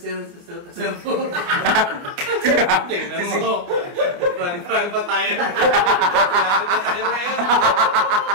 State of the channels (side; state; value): left; late; 29 ms